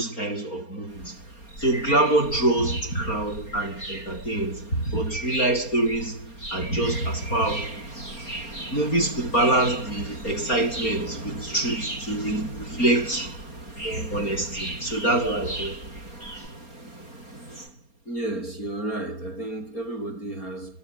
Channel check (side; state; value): right; late; 4.3 ms